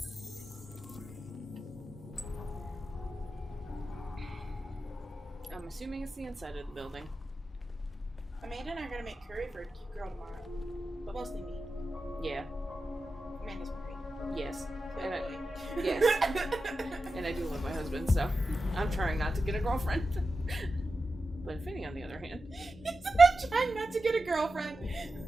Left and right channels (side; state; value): both; normal; correlation 0.91